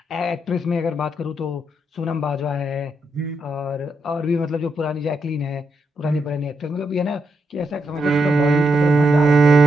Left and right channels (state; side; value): normal; both; correlation 0.81